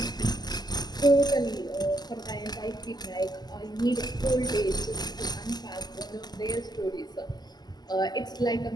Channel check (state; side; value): late; right; 0.20 ms